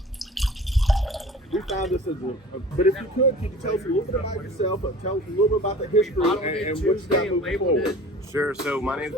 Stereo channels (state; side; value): normal; both; correlation 0.42